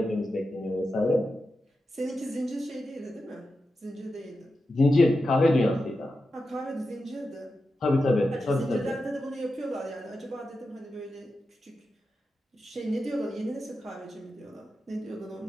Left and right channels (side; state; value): both; normal; correlation 0.90